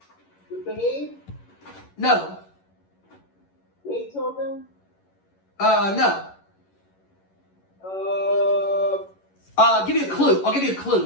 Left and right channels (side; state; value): right; late; 11 ms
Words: The Babe. No. Beethoven. No. I'll give you a